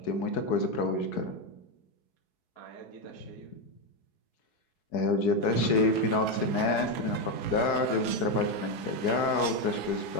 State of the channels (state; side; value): late; right; 4.7 ms